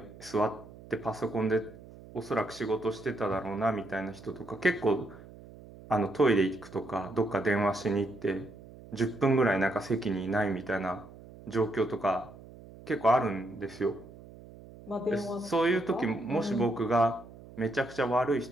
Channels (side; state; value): right; noise; hum, 19 dB below the sound